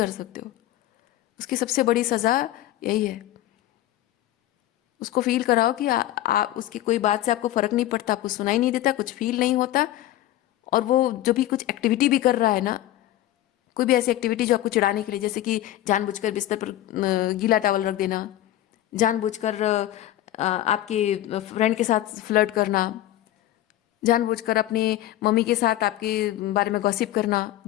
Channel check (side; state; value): right; quieter; 14.1 dB